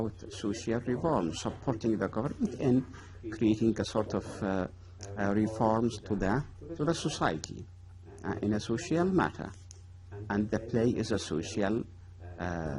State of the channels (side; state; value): both; identical; correlation 1.00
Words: social reforms, supporting the government in creating a sort of reforms to the society in a social matter. And the play is a social